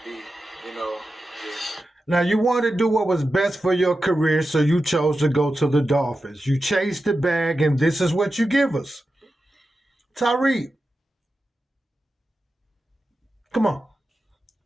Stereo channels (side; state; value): both; normal; correlation 0.91